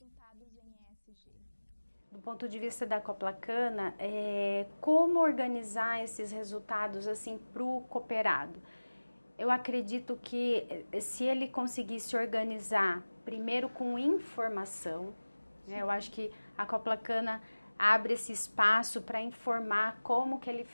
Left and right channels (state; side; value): inverted; both; correlation -1.00